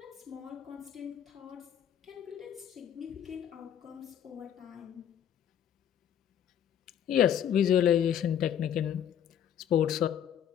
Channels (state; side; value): quieter; right; 9.6 dB